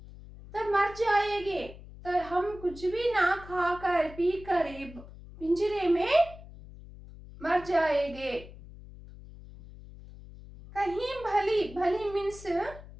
तो मर जाएंगे, तो हम कुछ भी ना खाकर पी कर पिंजरे में मर जाएंगे। कहीं भली, भली मीन्स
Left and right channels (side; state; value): left; noise; hum, 17 dB below the sound